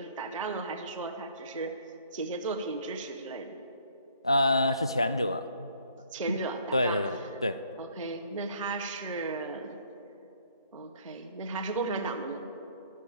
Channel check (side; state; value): both; inverted; correlation -0.60